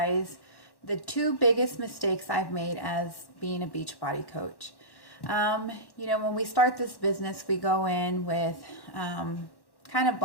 the two biggest mistakes I've made as being a Beachbody coach. When we start this business, we go in with kind of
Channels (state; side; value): late; right; 1.1 ms